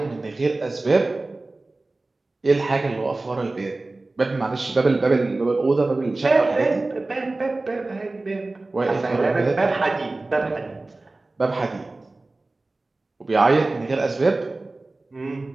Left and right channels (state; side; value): quieter; left; 3.1 dB